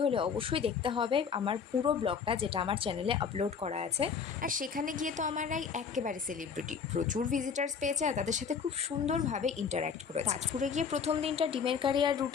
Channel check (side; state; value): right; quieter; 6.3 dB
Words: হলে অবশ্যই দেখতে হবে আমার পুরো ব্লগটা, যেটা আমার চ্যানেলে আপলোড করা আছে। আর সেখানে গিয়ে তো আমার রাই একেবারে সেলিব্রিটি, প্রচুর ভিজিটার্স পেয়েছে আর তাদের সাথে খুব সুন্দরভাবে ইন্টারঅ্যাক্ট করেছে। তাজপুরে গিয়ে প্রথম দিনটা ডিমের কারি আর